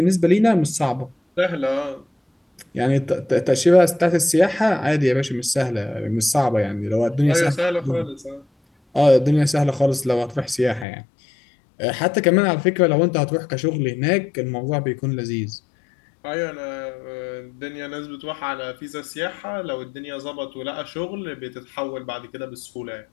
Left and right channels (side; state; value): right; drops out; at 10.9 s